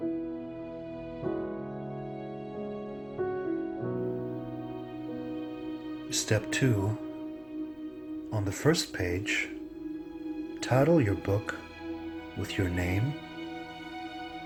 Step 2, on the first page, title your book with your name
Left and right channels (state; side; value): noise; left; hum, 28 dB below the sound